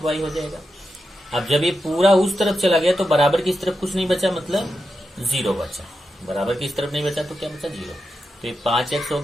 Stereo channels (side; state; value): both; normal; correlation 0.88